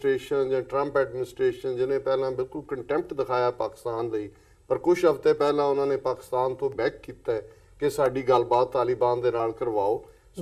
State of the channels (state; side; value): identical; both; correlation 1.00